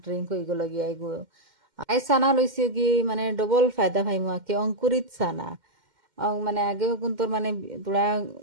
ড্রিঙ্ক হয়ে গেল গিয়া এগো। আই সানা লইছে কি মানে ডবল ফায়দা পাইমু আর কি, অঙ্কুরিত সানা। মানে আগেও কিন্তু মানে তোরা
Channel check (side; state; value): left; late; 2.1 ms